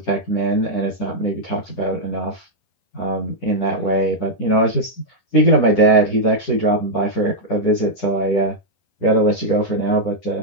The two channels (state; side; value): late; right; 10 ms